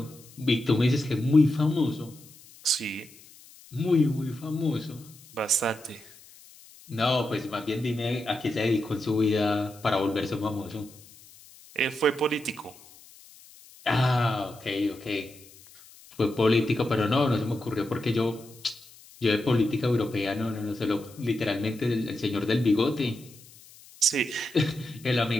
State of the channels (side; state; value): left; noise; hiss, 23 dB below the sound